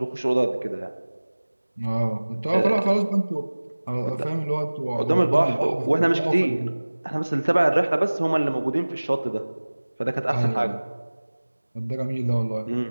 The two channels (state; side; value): inverted; both; correlation -1.00